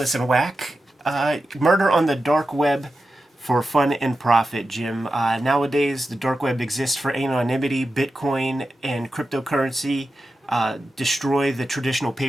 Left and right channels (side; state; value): both; normal; correlation 0.91